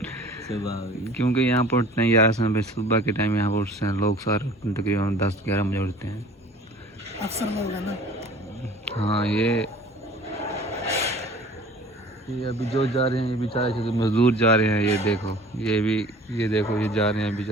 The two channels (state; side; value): normal; both; correlation 0.46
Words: सुबह हो गई। क्योंकि यहाँ पर उठते हैं यार समय सुबह के टाइम, यहाँ पर उठते हैं लोग सारे तकरीबन 10-11 बजे उठते हैं। अक्सर लोग हैं ना। हाँ ये अभी जो जा रहे हैं, ये बेचारे जो मजदूर जा रहे हैं, ये देखो ये भी, ये देखो ये जा रहे हैं